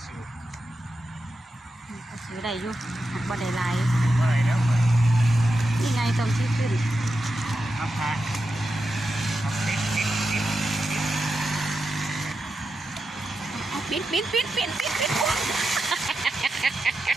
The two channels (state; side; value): normal; both; correlation 0.89